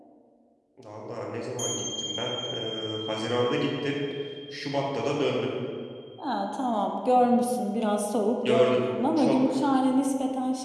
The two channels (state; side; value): identical; both; correlation 1.00